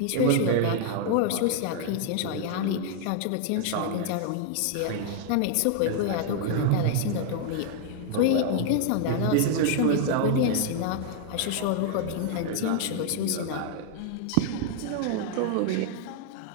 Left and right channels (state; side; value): different; both; correlation 0.00